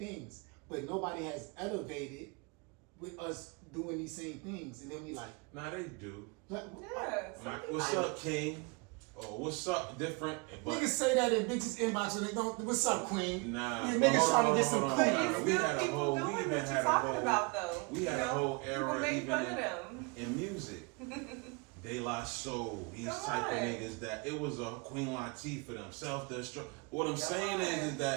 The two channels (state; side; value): quieter; left; 30.3 dB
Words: but nobody has elevated with us doing these same things. And then we like, nah, they do. like, Like, what's up, King? Or what's up, different? Niggas say that in bitches inbox and they don't. What's up, Queen? Nah, yeah, niggas trying to get some Queen. We had a whole. We even had a whole. About, though. We had a whole era even in music. De La Soul, these type of niggas that it was a Queen Latifah for them, self-destruct. What I'm saying is